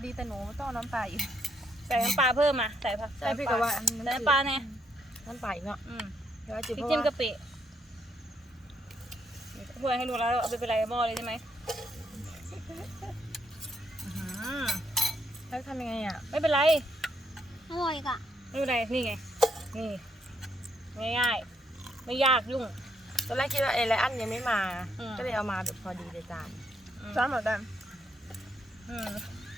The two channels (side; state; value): both; normal; correlation 0.75